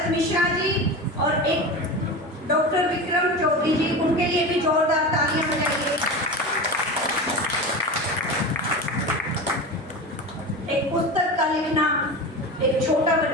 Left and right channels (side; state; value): both; normal; correlation 0.27